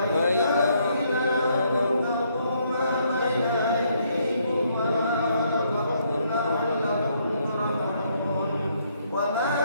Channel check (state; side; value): inverted; both; correlation -0.71